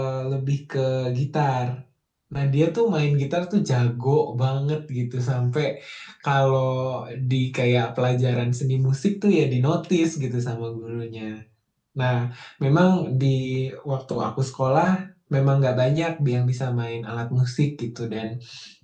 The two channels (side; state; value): both; identical; correlation 1.00